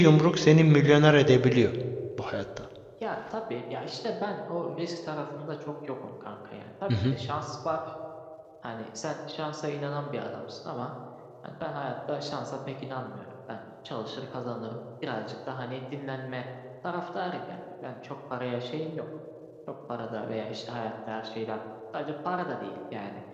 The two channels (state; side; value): identical; both; correlation 1.00